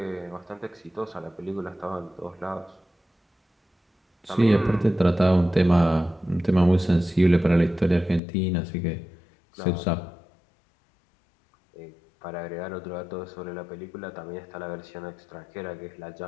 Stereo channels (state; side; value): drops out; right; at 8.2 s